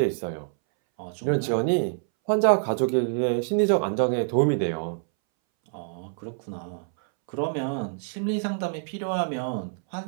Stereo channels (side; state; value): left; silent; 61 dB below the other